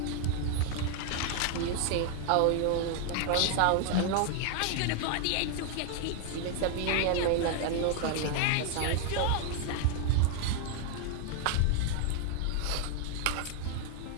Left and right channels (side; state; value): both; different; correlation 0.00